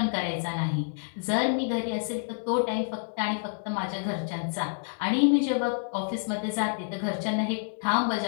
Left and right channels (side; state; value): right; silent; 59 dB below the other